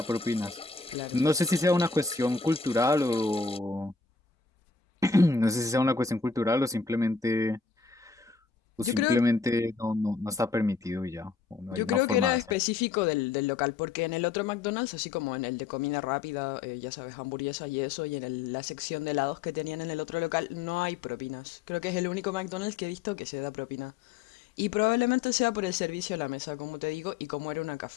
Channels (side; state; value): right; quieter; 4.8 dB